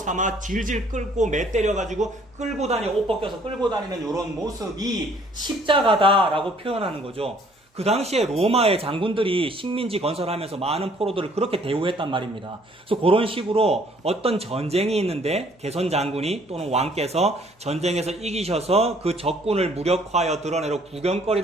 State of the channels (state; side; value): normal; both; correlation 0.60